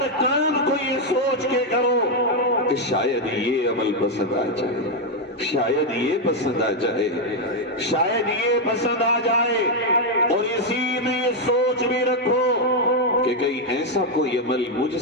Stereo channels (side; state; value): both; normal; correlation 0.02